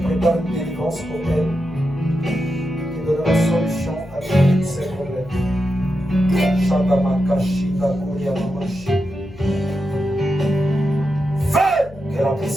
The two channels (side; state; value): left; noise; hum, 20 dB below the sound